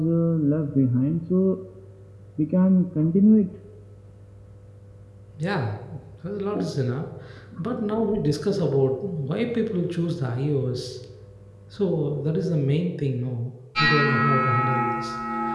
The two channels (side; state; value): both; identical; correlation 1.00